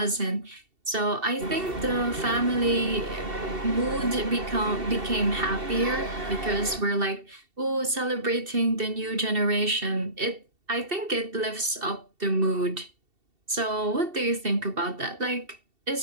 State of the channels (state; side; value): late; left; 2.7 ms